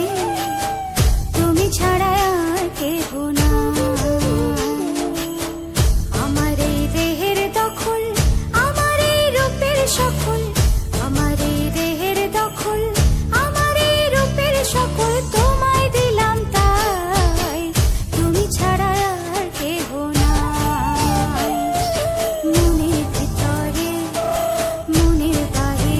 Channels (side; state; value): both; identical; correlation 1.00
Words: তুমি ছাড়া আর কেহ নাই। আমার এই দেহের দখল, আমার এই রূপের সকল, আমার এই দেহের দখল, আমার এই রূপের সকল তোমায় দিলাম তাই, তুমি ছাড়া আর কেহ নাই। মনের ভিতরে মনের